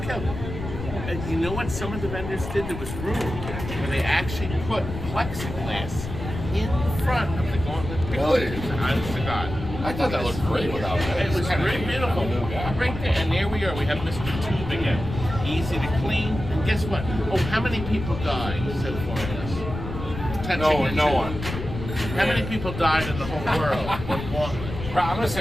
killed. And you know what some of the vendors did? There was room where they actually put plexiglass in front of the Gauntlet picture. Really? Honest to God. I thought that looked great without that. It was very beautiful. Right there. And there we are. We have Mr. Tube again. Easy to clean. And guess what? Oh, how many people died so far in this? No one. How many people died in the whole world? With Gauntlet? I'm going to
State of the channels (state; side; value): noise; left; rumble, 8 dB below the sound